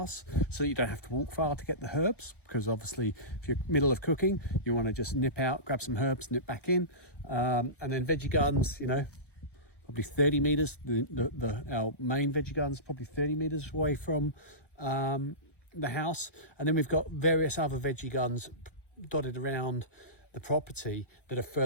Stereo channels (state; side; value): late; right; 1.1 ms